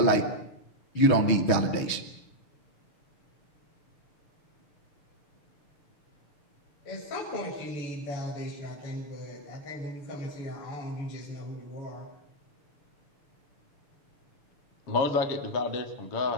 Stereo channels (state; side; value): late; right; 6.3 ms